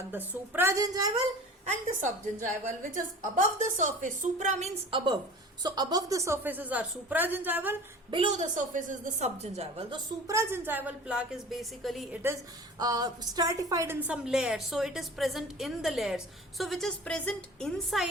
the supragingival and the subgingival, which is above the surface. Supra means above. So above the surfaces are supragingival, below the surface is the subgingival. The supragingival plaque is basically, it is stratified in some layers. So it is present in the layers. So which is present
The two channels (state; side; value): normal; both; correlation 0.40